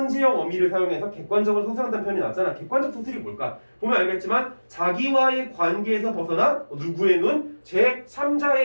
어미를 사용해서 객관적으로 서술한다는 표현이 나왔잖아. 객관적 서술이 뭘까? 보면 알겠지만 자기와의 관계에서 벗어나 누구의 눈?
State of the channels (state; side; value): inverted; both; correlation -1.00